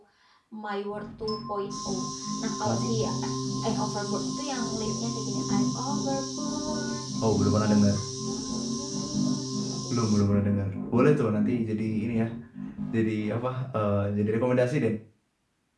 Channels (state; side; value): identical; both; correlation 1.00